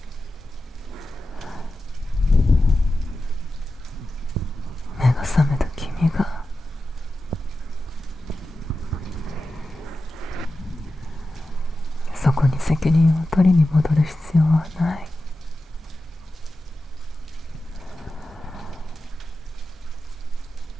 目が覚めた君がそこに責任を取りに戻る必要はない。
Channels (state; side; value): normal; both; correlation 0.92